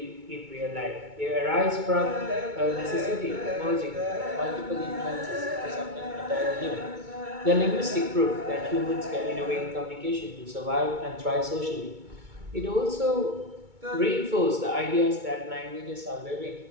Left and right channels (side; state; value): left; late; 2.2 ms